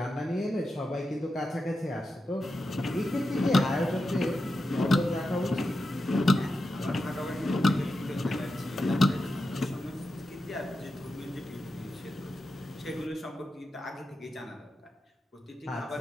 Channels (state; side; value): normal; both; correlation 0.89